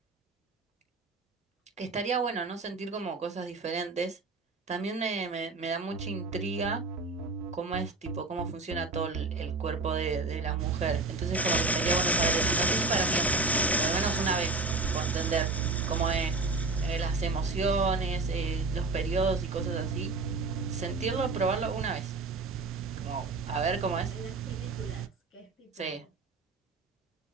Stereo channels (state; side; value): quieter; left; 3.7 dB